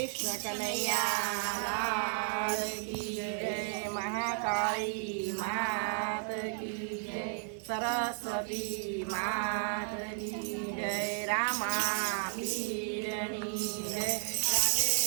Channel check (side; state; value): left; silent; 55 dB below the other